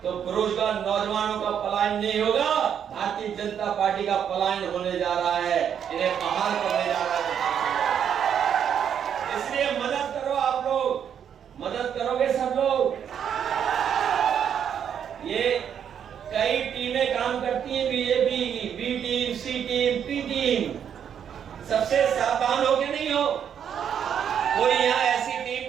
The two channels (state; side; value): quieter; left; 8.5 dB